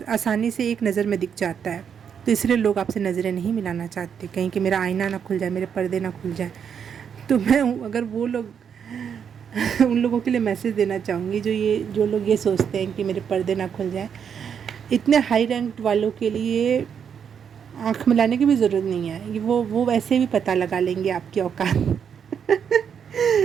से एक नज़र में दिख जाता है, तो इसलिए लोग आपसे नज़रें नहीं मिलाना चाहते, कहीं कि मेरा आईना ना खुल जाए, मेरे पर्दे ना खुल जाए। तो मैं अगर वो लोग उन लोगों के लिए मैसेज देना चाहूँगी जो लोग ये सोचते हैं कि मेरे पर्दे ना खुल जाए। इतने हाई रैंक्ड वालों के लिए आँख मिलाने की भी ज़रूरत नहीं है, वो वैसे भी पता लगा लेंगे आपकी औकात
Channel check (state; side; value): quieter; left; 7.6 dB